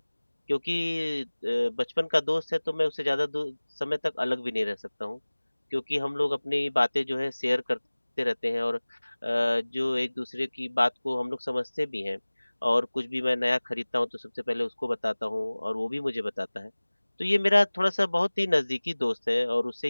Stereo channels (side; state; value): both; inverted; correlation -1.00